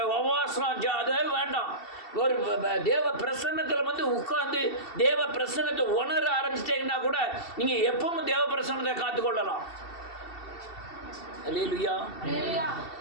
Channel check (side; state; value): right; late; 2.7 ms